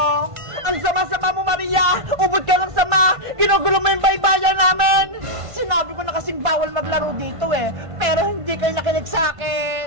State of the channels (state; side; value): late; left; 1.5 ms